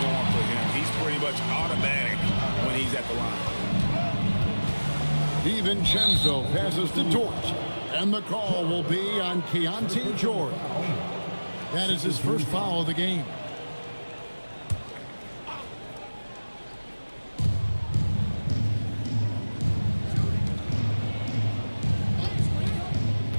norm for him. He's pretty much automatic when he's at the line. DiVincenzo passes to Dort, and the call will be on Keontae George. That is his first foul of the game.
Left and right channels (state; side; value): inverted; both; correlation -1.00